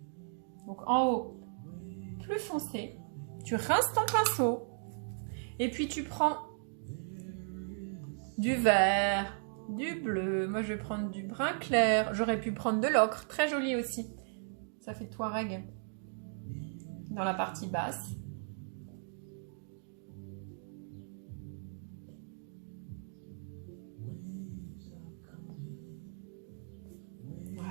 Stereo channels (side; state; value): left; silent; digital silence